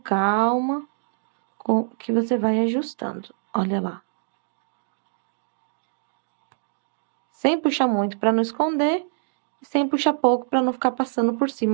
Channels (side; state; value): left; silent; digital silence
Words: que você vai ajustando. Olha lá. Sem puxar muito para não esconder e sem puxar pouco para não ficar passando por